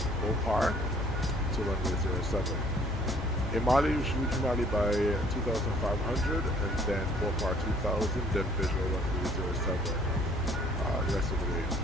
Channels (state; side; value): normal; both; correlation 0.58